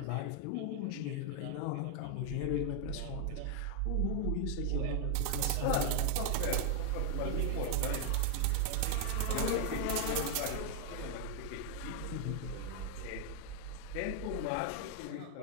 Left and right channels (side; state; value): both; different; correlation 0.00